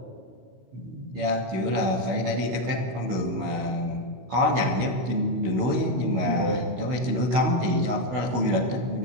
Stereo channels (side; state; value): left; late; 16 ms